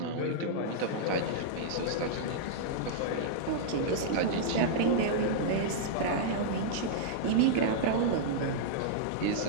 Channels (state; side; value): different; both; correlation -0.02